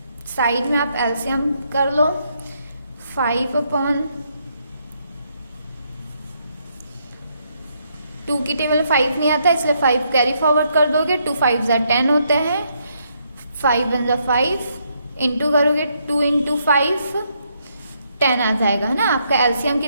साइड में आप एलसीएम कर लो 5/2 की टेबल 5 नहीं आता इसलिए 5 कैरी फॉरवर्ड कर दोगे 2 5 10 होते हैं 5 1 5 इंटू करोगे 2 × 5 10 आ जाएगा है ना। आपका एलसीएम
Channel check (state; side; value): inverted; both; correlation -0.75